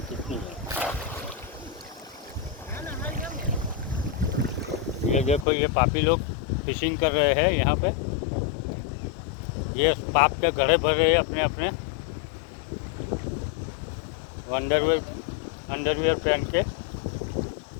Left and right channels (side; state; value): right; drops out; at 5.5 s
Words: कितनी है। ये देखो, ये पापी लोग फिशिंग कर रहे हैं यहाँ पे। ये पाप के घड़े भर रहे हैं अपने अपने। अंडरवेयर अंडरवेयर पहन के